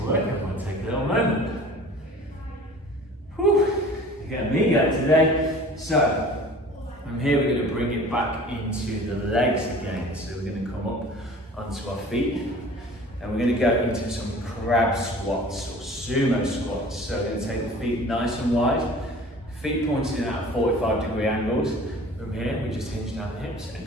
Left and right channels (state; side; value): normal; both; correlation 0.44